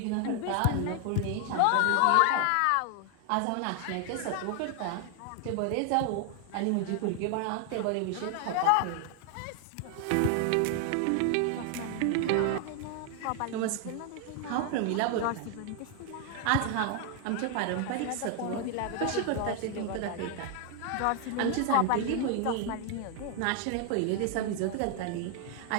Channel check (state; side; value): different; both; correlation 0.00